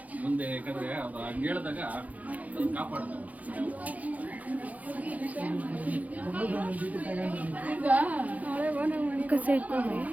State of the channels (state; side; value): late; left; 0.075 ms